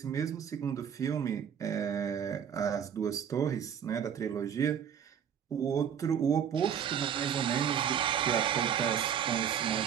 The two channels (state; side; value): quieter; left; 8.4 dB